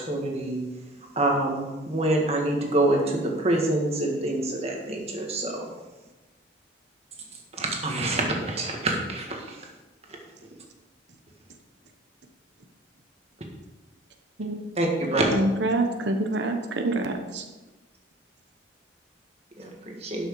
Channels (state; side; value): normal; both; correlation 0.45